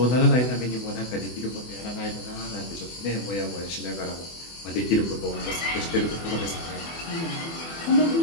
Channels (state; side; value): late; right; 24 ms